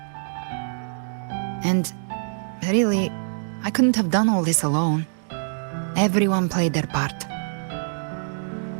And really, I couldn't have done all this alone. Everyone played their part.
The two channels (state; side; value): silent; left; digital silence